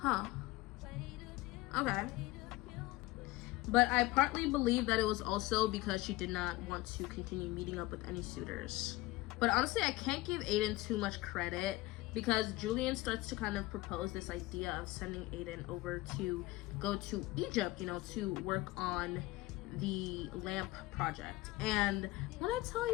Okay. But I partly believe that it was also because she did not want to continue meeting up with any suitors. But honestly, I can't give Aiden too much credit, because Julian starts to kind of propose this idea of sending Aiden over to go to Egypt, you know, to work on the lamp project. And when I tell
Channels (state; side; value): quieter; right; 19.3 dB